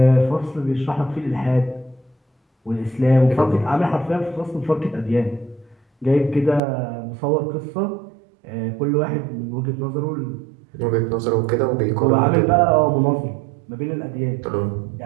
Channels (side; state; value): left; drops out; at 6.6 s